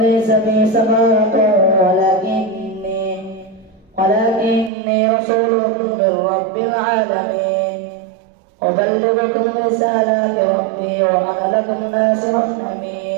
بي سفاهة ولكني رسول من رب العالمين أبلغ ربي وأنا لكم ناصح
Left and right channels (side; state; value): left; drops out; at 4.7 s